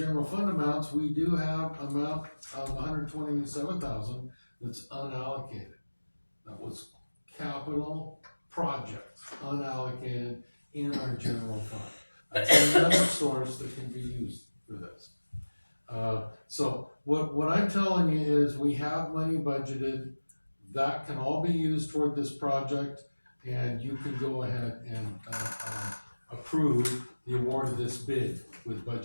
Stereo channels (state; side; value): inverted; both; correlation -1.00